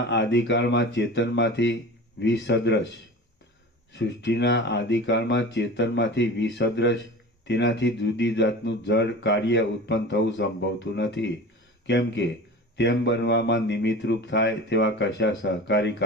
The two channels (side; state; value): both; normal; correlation 0.35